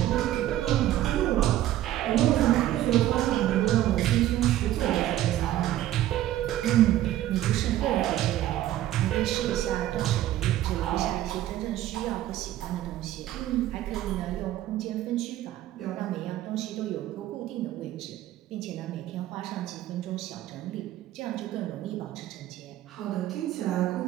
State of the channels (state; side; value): quieter; left; 13.6 dB